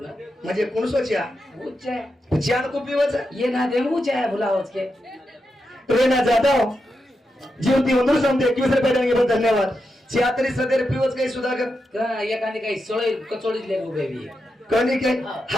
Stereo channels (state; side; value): normal; both; correlation 0.87